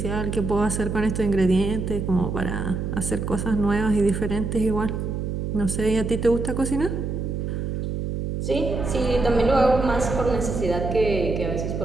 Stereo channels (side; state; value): right; noise; hum, 3 dB below the sound